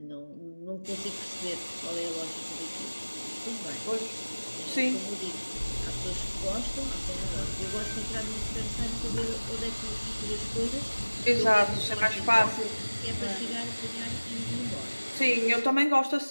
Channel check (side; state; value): both; inverted; correlation -1.00